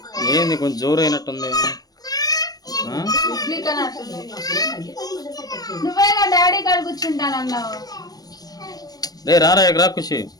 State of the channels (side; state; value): right; late; 0.19 ms